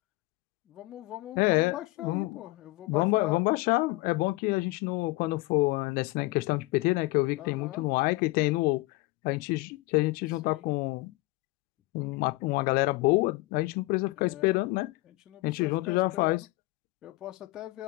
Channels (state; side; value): quieter; right; 21.5 dB